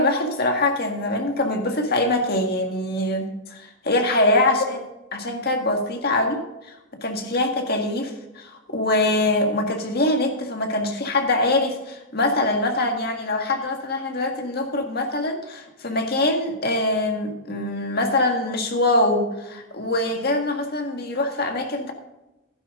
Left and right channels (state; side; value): normal; both; correlation -0.19